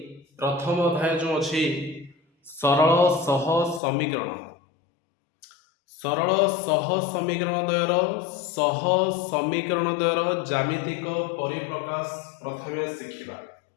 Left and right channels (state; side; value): drops out; right; at 3.8 s